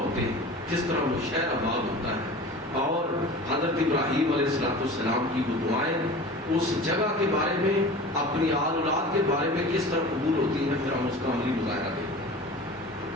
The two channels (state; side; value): normal; both; correlation 0.37